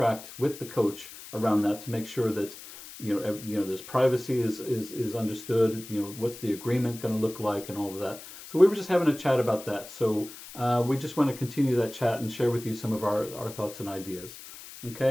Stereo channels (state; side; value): noise; left; hiss, 15 dB below the sound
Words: with the coach around that to make sure that there's privacy is understood. What's the agreement going to look like and all of that. So we were just having a chat about that. So we just want to continue that chat and share with you some of our thoughts and ideas.